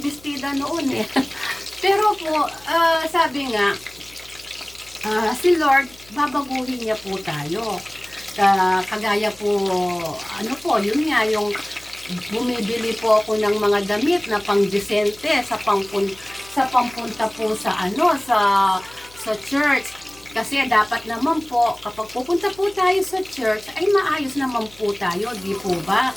noon eh. Pero po, sabi nga, si Lord, babaguhin niya po tayo. Kagaya po, ano po, yun nga, yung bumibili po ako ng mga damit na pang-disente sa pampunta po sa church. Kasi dapat naman po, kapag pupunta po tayo sa church, ay maayos naman po tayo, di po ba?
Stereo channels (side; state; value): left; noise; hum, 25 dB below the sound